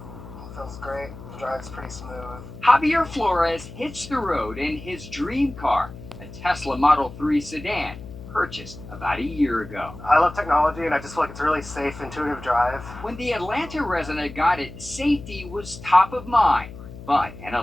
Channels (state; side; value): noise; left; hum, 14 dB below the sound